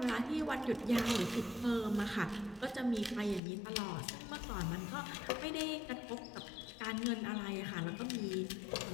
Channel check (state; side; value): drops out; right; at 3.4 s